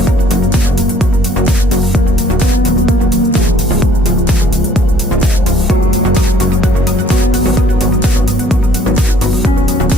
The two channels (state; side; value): normal; both; correlation 0.59